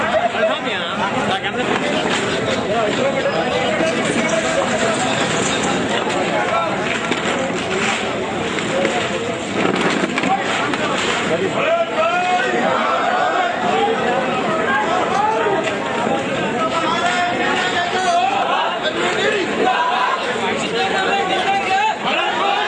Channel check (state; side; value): identical; both; correlation 1.00